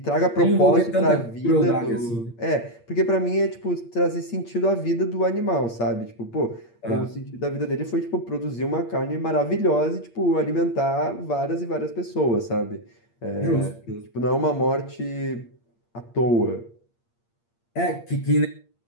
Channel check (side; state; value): right; late; 8.6 ms